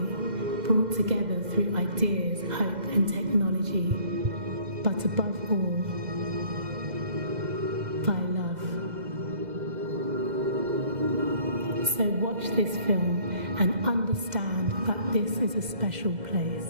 brought together through ideas, hope and technology. But above all, this film and understand that this is a special place.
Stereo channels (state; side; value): late; left; 2.0 ms